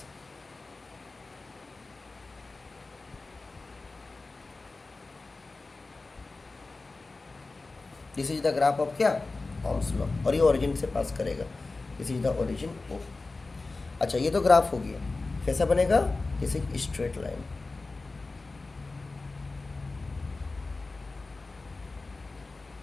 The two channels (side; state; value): right; quieter; 3.5 dB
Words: This is the graph of क्या, ओम्स लॉ, और ये ओरिजिन से पास करेगा। This is the origin O. अच्छा, ये तो ग्राफ हो गया, कैसा बनेगा, this is straight line.